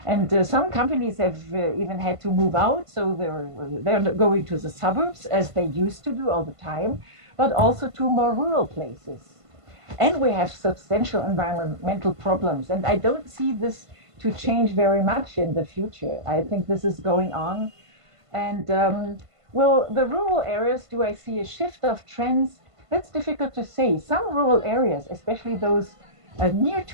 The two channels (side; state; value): left; late; 1.5 ms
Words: And some companies have even had to move out, so they're going to the suburbs as they used to do all the time, but also to more rural places. And we have substantial environmental problems. And I don't see this to change very much in the future. I think this is going on. And well, the rural areas, do I see a shift of trends? That's difficult to say. Some rural areas, especially those near